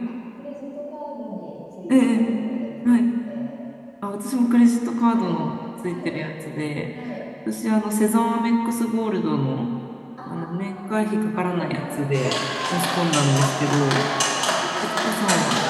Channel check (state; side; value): identical; both; correlation 1.00